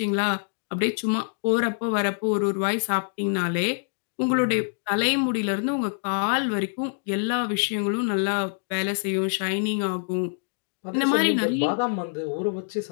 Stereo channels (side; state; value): right; silent; digital silence